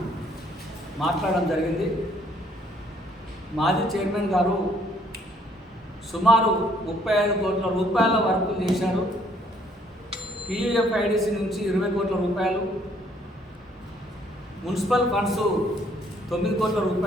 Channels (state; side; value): normal; both; correlation 0.64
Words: మాట్లాడడం జరిగింది. మాజీ చైర్మన్ గారు సుమారు 35 కోట్ల రూపాయల వర్కులు చేశారు. PUFIDC నుంచి 20 కోట్ల రూపాయలు, మున్సిపల్ ఫండ్స్ 9 కోట్ల